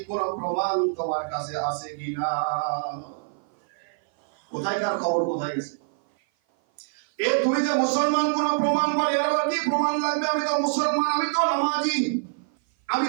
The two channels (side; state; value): left; silent; 56 dB below the other